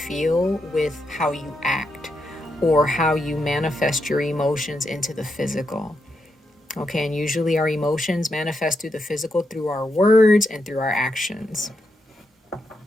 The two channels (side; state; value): both; normal; correlation 0.83